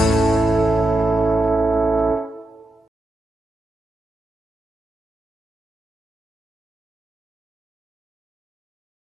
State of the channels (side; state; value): both; normal; correlation 0.88